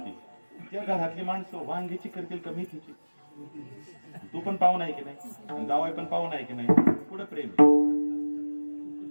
त्या घरातली माणसं वांग्याची करतील का मेथीची? तू पण पाहुणा आहे की नाही, जावाई पण पाहुणा आहे की नाही, पुढे प्रेम.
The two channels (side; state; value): both; inverted; correlation -1.00